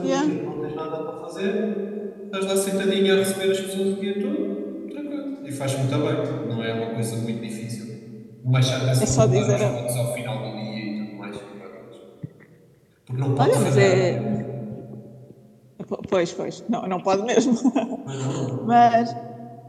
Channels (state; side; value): identical; both; correlation 1.00